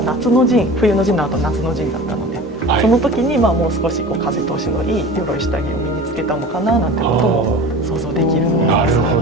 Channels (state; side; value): normal; both; correlation 0.36